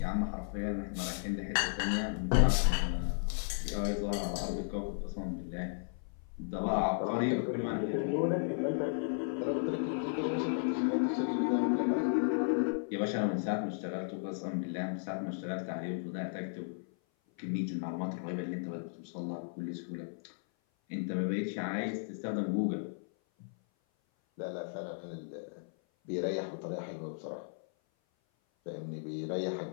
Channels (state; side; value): silent; right; 55 dB below the other